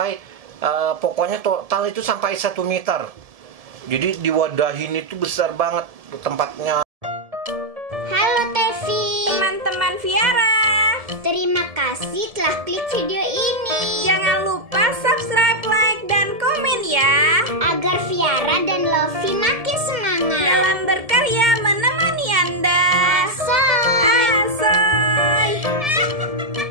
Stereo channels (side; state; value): left; late; 1.7 ms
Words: pokoknya total itu sampai 1 meter. Jadi diwadahin itu besar banget tempatnya. Halo Tevi, Teman-teman Viara, terima kasih telah klik video ini. jangan lupa subscribe, like, dan komen ya, Agar Viara dan Lofi makin semangat dalam berkarya menemani Anda. Asoy. Asoy.